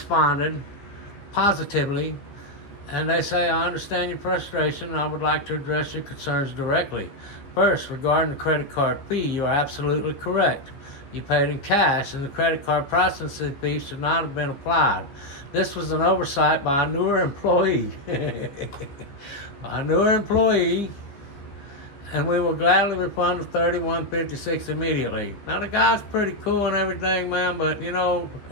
positively, and they say, I understand your frustration, and I would like to address your concerns directly. First, regarding the credit card fee, you are absolutely correct. You paid in cash, and the credit card processing fee should not have been applied. This was an oversight by a newer employee. And we will gladly refund the $31.56 immediately. Now the guy's pretty cool and everything, man, but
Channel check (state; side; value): late; right; 14 ms